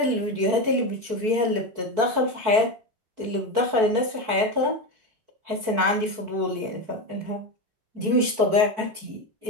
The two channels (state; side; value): late; left; 4.5 ms